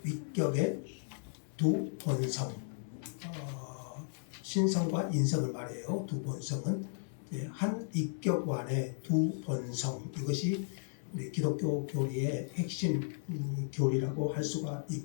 위격의 두 본성, 신성과 인성을 말해요. 두 본성은 한 위격 안에 두 본성, 이것이 우리 기독교 교리의 핵심 교리라고 할 수가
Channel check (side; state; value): right; silent; 54 dB below the other